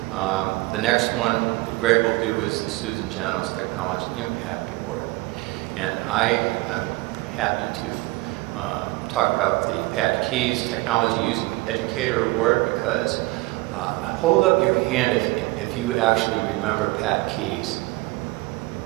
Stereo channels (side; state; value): left; quieter; 21.9 dB